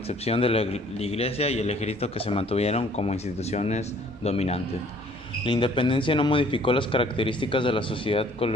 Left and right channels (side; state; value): both; normal; correlation 0.57